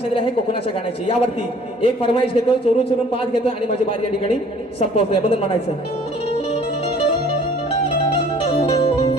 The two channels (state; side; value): normal; both; correlation 0.54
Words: दिली आहे कोकणाच्या गाण्याची. यावरती एक फरमाईश घेतो चोरून चोरून पाच घेतो आणि माझी बारी या ठिकाणी संपवतोय बदल म्हणायचं.